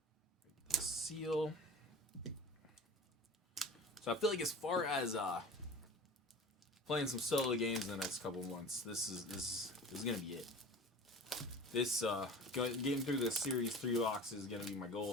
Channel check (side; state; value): both; normal; correlation 0.39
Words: the seal. So I feel like as far as playing some solo games in the next couple of months, this is gonna be it. This getting through the Series 3 box is gonna be my